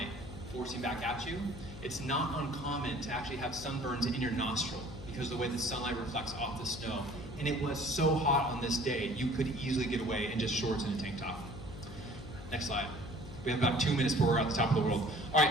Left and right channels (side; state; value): left; noise; hum, 13 dB below the sound